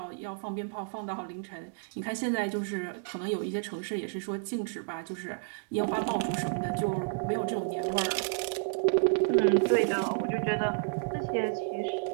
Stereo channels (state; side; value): silent; left; digital silence